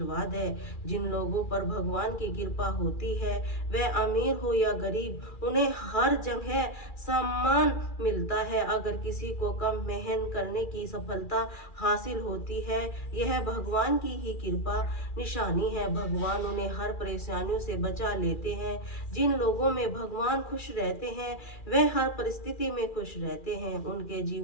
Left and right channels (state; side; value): late; right; 2.4 ms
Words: है। जिन लोगों पर भगवान की कृपा होती है, वह अमीर हो या गरीब, उन्हें हर जगह सम्मान मिलता है। अगर किसी को कम मेहनत करने की सफलता हासिल होती है, यह भगवान की ही कृपा निशानी है। भगवान उन्हें हर परेशानियों से बचा लेते हैं। जिन लोगों में भगवान खुश रहते हैं, वह हर परिस्थिति में खुश रहते हैं। उनके